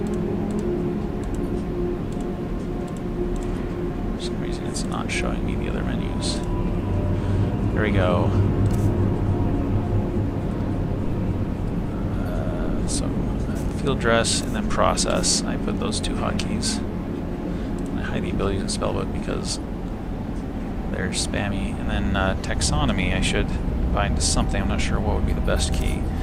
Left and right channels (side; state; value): both; identical; correlation 1.00